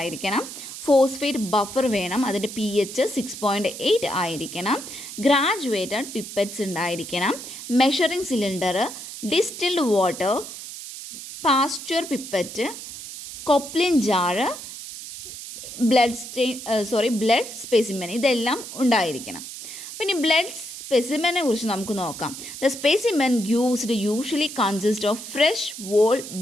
ഫോസ്ഫേറ്റ് ബഫർ വേണം, അതിൻ്റെ pH 6.8 ആയിരിക്കണം, ഗ്രാജുവേറ്റഡ് പിപ്പറ്റ്സ് ഉണ്ടായിരിക്കണം, measuring cylinder, distilled water, Pasteur pipette, Coplin jar, blood specimen, ഇതെല്ലാം ഉണ്ടായിരിക്കണം. പിന്നെ ബ്ലഡ് സ്പെസിമെനെ കുറിച്ച് നമുക്ക് നോക്കാം. The specimen used usually consist of fresh whole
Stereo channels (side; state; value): right; noise; hiss, 11 dB below the sound